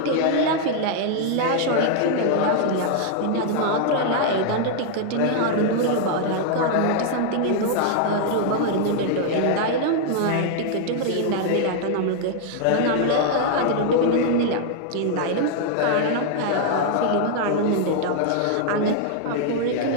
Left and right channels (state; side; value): different; both; correlation -0.01